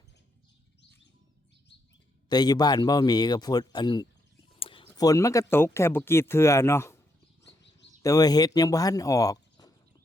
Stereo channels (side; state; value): both; normal; correlation 0.78